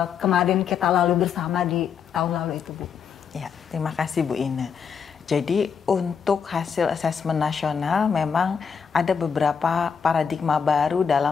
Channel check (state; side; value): quieter; right; 6.6 dB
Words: kemarin kita lalu bersama di tahun lalu itu Bu. Ya, terima kasih Bu Ine. Jadi untuk hasil asesmen nasional memang ada beberapa paradigma baru